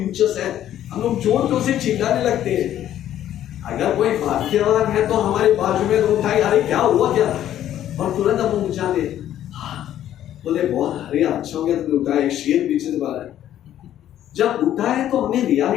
है, हम लोग जोर तो से चिल्लाने लगते हैं। अगर कोई भाग्यवान है तो हमारे बाजू में तो उठाई, अरे क्या हुआ क्या, और तुरंत हम उठा ले, बोले बहुत अरे अच्छा हो गया तुमने उठाया, एक शेर पीछे से बाहर है। जब उठा है तो हमें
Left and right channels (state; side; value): quieter; right; 11.6 dB